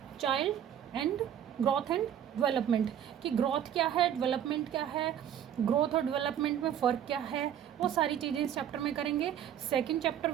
child and growth and development, कि ग्रोथ क्या है, डेवलपमेंट क्या है, ग्रोथ और डेवलपमेंट में फ़र्क क्या है, वो सारी चीज़ें इस चैप्टर में करेंगे। Second chapter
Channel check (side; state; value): left; quieter; 9.8 dB